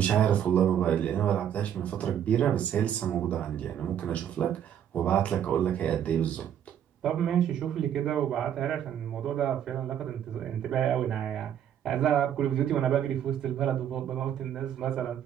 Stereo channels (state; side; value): quieter; left; 9.7 dB